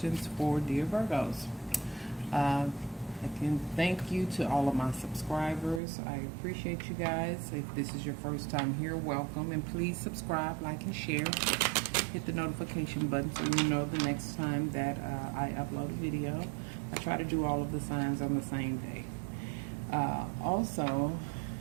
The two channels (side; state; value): left; drops out; at 5.8 s